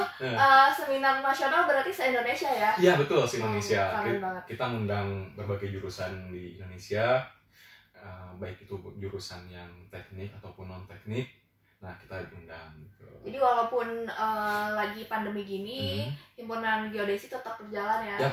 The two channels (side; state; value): both; identical; correlation 1.00